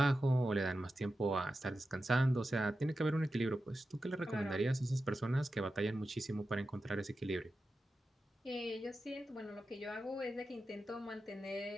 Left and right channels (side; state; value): both; normal; correlation 0.91